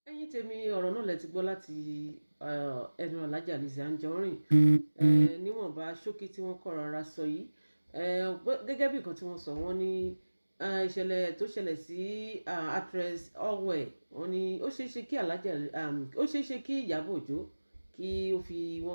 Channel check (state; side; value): inverted; both; correlation -1.00